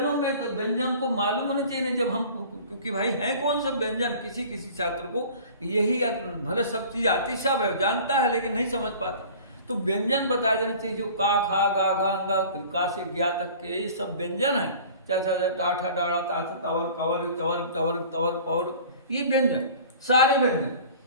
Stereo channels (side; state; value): both; inverted; correlation -0.44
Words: में तो व्यंजन को मालूम होना चाहिए, नहीं जब हम, क्योंकि भाई है कौन सा व्यंजन, किसी किसी छात्र को यही भले सब चीज आती, सब जानता है लेकिन नहीं समझ पाता, तो व्यंजन बता देना चाहिए। जो का, खा, गा, घा, अंगा, का से ज्ञा तक के ये सब व्यंजन है। चाचा, टाठा, डाड़ा, ताथा, तवर, कवर, चवर, टवर, तवर, पौर, ये व्यंजन, सारे व्यंजन।